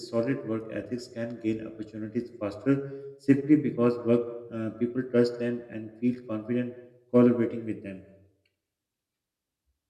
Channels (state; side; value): identical; both; correlation 1.00